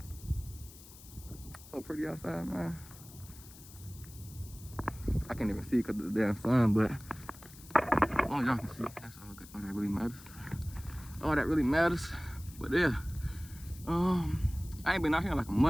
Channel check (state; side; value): noise; left; hiss, 19 dB below the sound